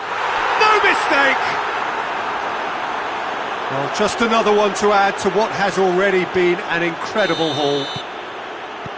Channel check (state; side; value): identical; both; correlation 1.00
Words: No mistake! Well, just another one to add to what has already been an incredible haul.